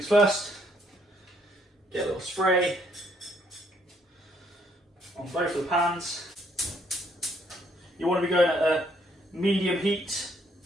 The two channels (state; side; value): normal; both; correlation 0.69